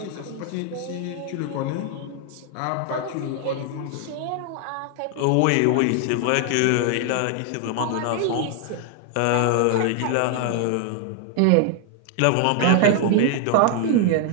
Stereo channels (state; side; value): different; both; correlation 0.00